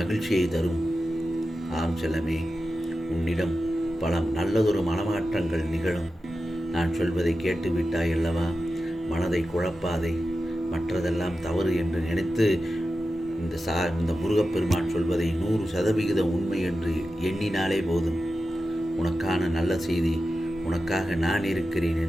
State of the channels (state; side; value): normal; both; correlation 0.92